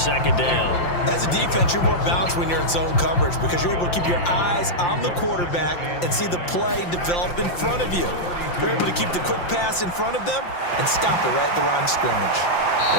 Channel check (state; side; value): late; right; 5.7 ms